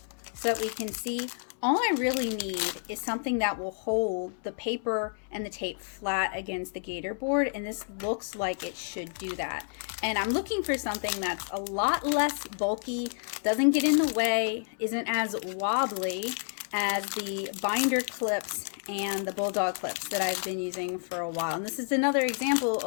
so that we can see. All I really need is something that will hold the paper and the tape flat against the gator board, and this looks like it should do that. And I'm looking for something that's a lot less bulky, doesn't get in the way, isn't as wobbly as the binder clips and the bulldog clips that I've been using for a while. And this is another example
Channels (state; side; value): silent; right; 58 dB below the other